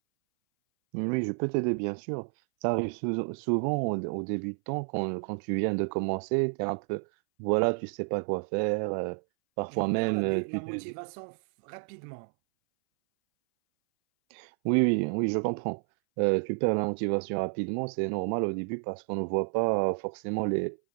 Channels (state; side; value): silent; left; 58 dB below the other